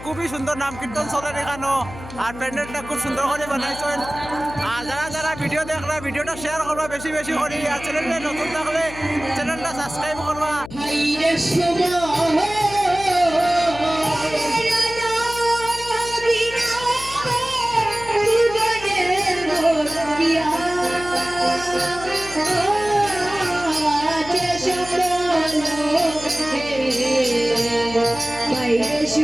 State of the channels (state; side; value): noise; left; hum, 14 dB below the sound